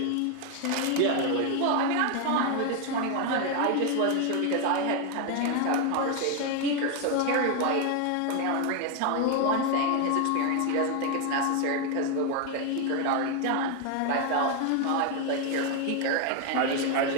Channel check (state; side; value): different; both; correlation 0.01